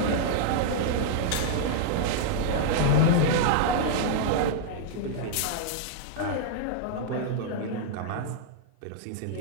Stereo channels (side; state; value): both; different; correlation -0.01